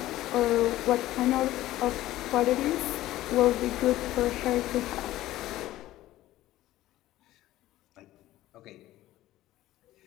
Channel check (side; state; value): right; quieter; 15.4 dB